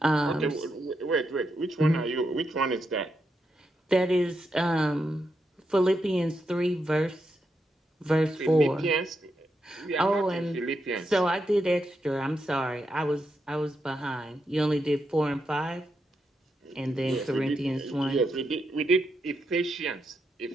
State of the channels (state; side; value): normal; both; correlation 0.83